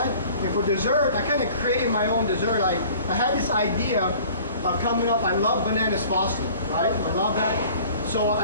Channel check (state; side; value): inverted; both; correlation -0.48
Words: And for dessert, I kind of created my own dessert. I had this idea coming up. I love bananas frosted, right? I love that. So